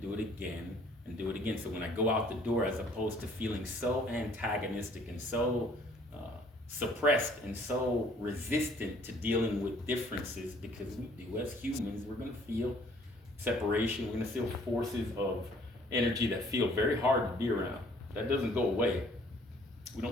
do it again, and do it again. So when I go out the door, as opposed to feeling so antagonistic and so suppressed and so resistant to dealing with differences, because we do as humans, we're going to feel separation, we're going to feel forces of energy that feel very hard to be around. That doesn't go away. We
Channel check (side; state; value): both; normal; correlation 0.59